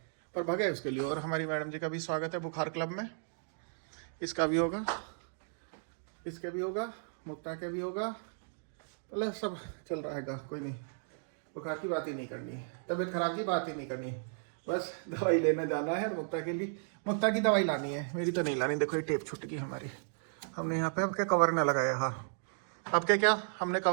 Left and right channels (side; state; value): left; silent; digital silence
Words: पर भगे उसके लिए। और हमारी मैडम जी का भी स्वागत है बुखार क्लब में। इसका भी होगा, इसके भी होगा, मुक्ता के भी होगा, मतलब सब चल रहा है। कोई नहीं, बुखार की बात ही नहीं करनी, तबीयत खराब की बात ही नहीं करनी, बस दवाई लेने जाना है। मुक्ता के लिए, मुक्ता की दवाई लानी है, मेरी तो नहीं लानी। देखो ये टेप छूट गई हमारी, हमने यहाँ पे अब क्या कवर न लगाया। हाँ अब क्या हमने